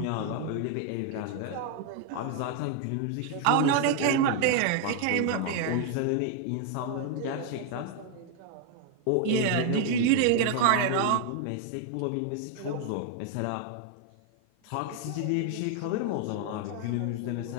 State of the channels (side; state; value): both; different; correlation 0.01